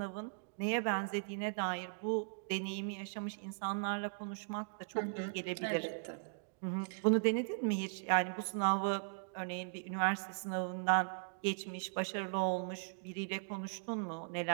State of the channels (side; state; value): left; silent; digital silence